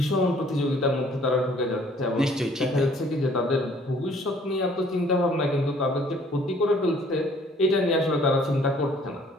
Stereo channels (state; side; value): normal; both; correlation 0.58